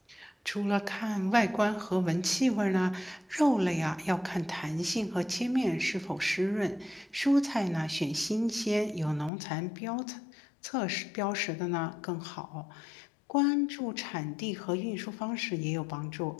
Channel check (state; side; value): drops out; right; at 9.3 s